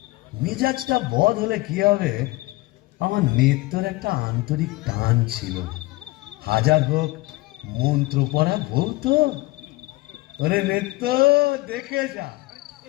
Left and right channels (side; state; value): right; quieter; 21.2 dB